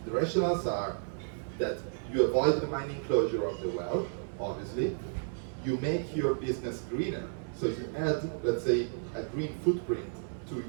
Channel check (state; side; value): silent; left; digital silence